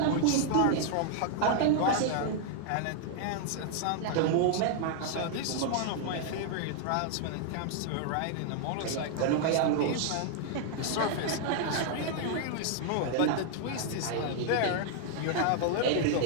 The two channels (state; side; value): different; both; correlation 0.00